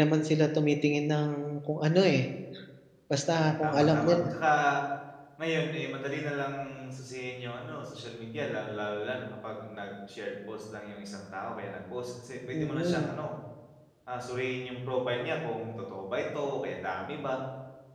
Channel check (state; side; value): identical; both; correlation 1.00